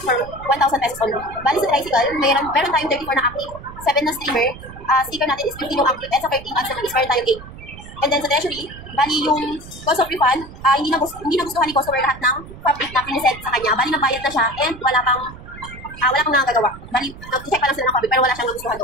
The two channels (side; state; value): right; noise; rumble, 15 dB below the sound